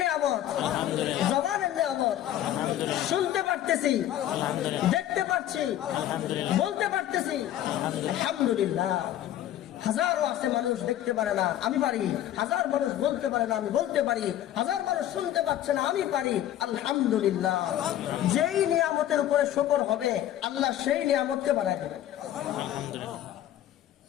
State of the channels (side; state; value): right; quieter; 12.2 dB